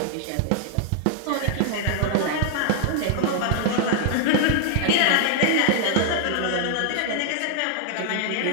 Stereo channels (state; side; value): different; both; correlation 0.00